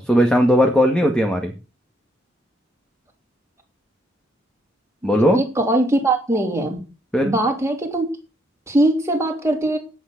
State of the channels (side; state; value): both; normal; correlation 0.73